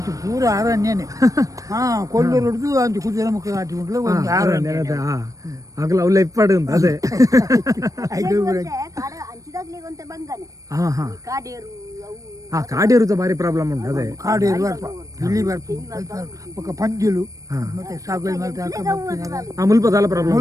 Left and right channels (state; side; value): late; left; 0.16 ms